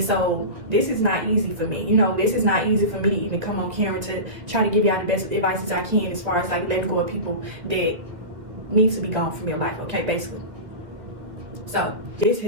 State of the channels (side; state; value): left; late; 2.3 ms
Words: so this is not easy for me. You know, this is not easy for me to even come on camera to try to give y'all the best advice as I can as far as like letting go of people that need to be gone from your life, okay, basically. So this